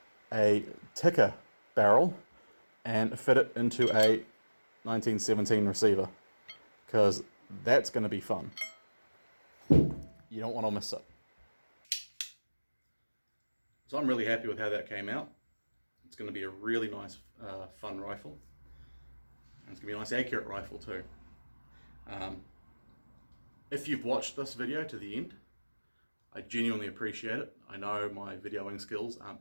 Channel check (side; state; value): both; inverted; correlation -1.00